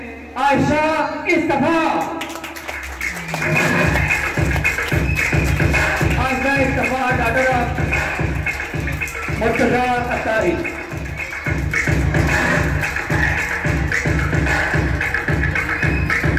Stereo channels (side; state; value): both; identical; correlation 1.00